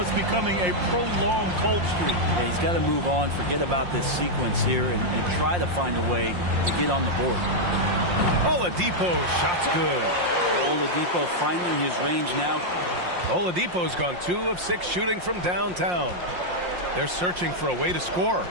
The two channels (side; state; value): left; late; 5.6 ms